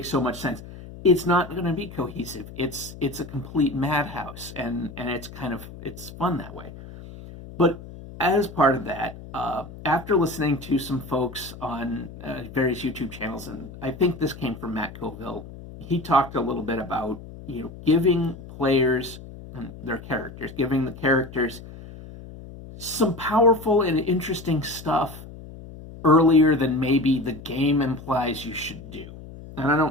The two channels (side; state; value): left; noise; hum, 15 dB below the sound